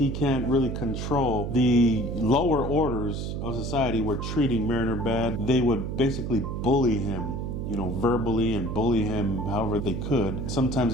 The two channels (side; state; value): right; noise; hum, 4 dB below the sound